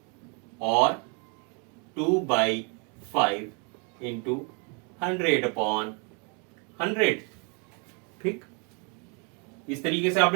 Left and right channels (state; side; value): quieter; left; 34.9 dB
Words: और 2/5 इंटू 100/100, ठीक। इस तरीके से